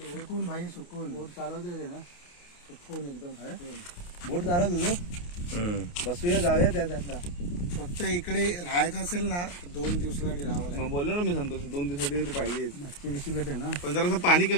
सुकून भाई सुकून बोट चालवते ना सुकून एकदम बोट चालवत होतो. बसूया जाऊया त्या साईडला. फक्त इकडे राहायचं असेल ना तर 2 दिवसासाठी राहावं लागेल. मग बोललो ना मी संतोष 2 दिवसासाठी पाहिजे. मच्छी बिशी भेटेल ना. पण जरा पाणी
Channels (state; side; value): late; right; 28 ms